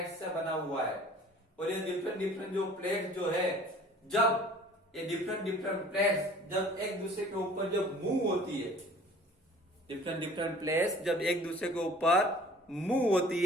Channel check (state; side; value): normal; both; correlation 0.50